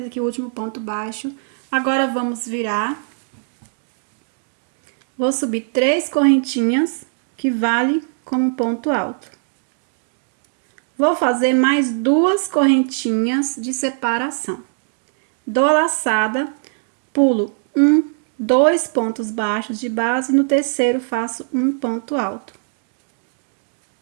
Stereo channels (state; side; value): silent; left; 65 dB below the other